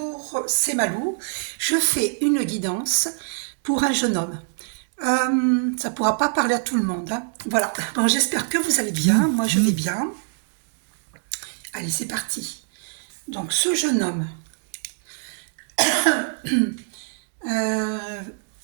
c'est Malou. Je fais une guidance pour un jeune homme. Ça pourra pas parler à tout le monde, hein. Voilà. Bon, j'espère que vous allez bien. Moi, je vais bien. Allez, c'est parti. Donc, ce jeune homme. euh,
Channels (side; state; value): left; silent; 62 dB below the other